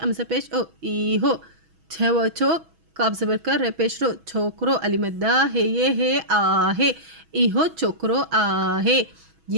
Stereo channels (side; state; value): left; late; 6.2 ms